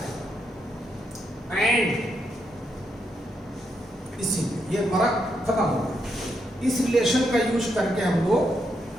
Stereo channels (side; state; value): both; normal; correlation 0.80